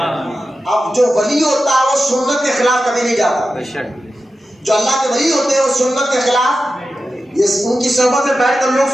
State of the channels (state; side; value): normal; both; correlation 0.92